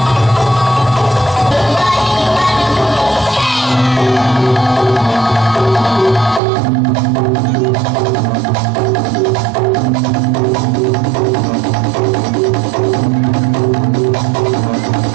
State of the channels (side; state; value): left; drops out; at 6.4 s